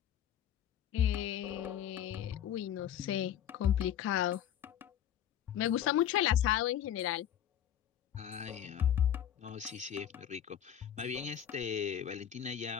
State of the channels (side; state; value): right; quieter; 10.1 dB